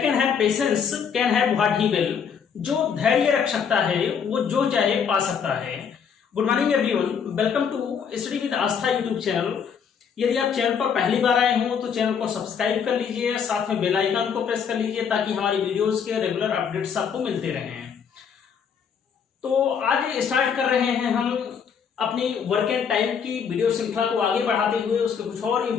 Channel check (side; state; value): right; quieter; 7.0 dB